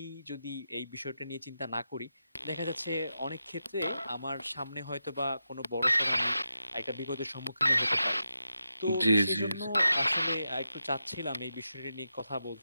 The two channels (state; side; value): inverted; both; correlation -0.88